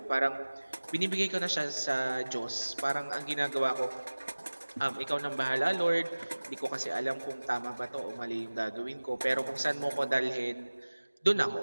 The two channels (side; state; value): both; inverted; correlation -1.00